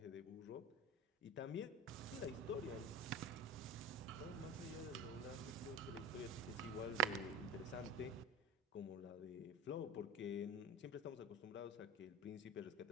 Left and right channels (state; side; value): normal; both; correlation 0.31